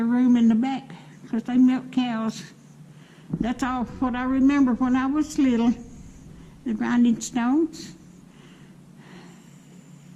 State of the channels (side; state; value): both; identical; correlation 1.00